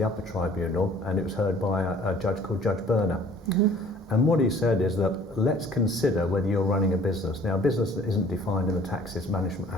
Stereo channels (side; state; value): both; normal; correlation 0.53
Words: upper tribunal, and it was heard by a judge called Judge Berner. Mm-hmm. And what he said is that let's consider whether you're running a business. Now, a business that isn't defined in the Taxes Management